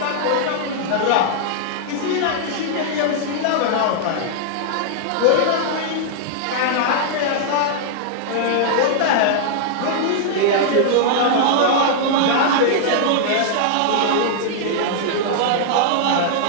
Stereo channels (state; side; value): different; both; correlation -0.01